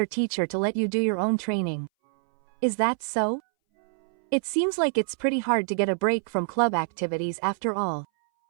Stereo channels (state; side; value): silent; left; 60 dB below the other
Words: teacher to let you do your own training. Is that so? It seems like it's pretty hard to get a break from club activities after all.